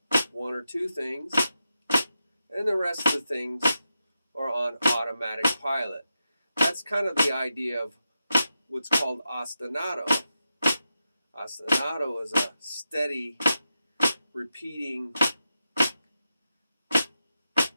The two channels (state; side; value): inverted; both; correlation -0.89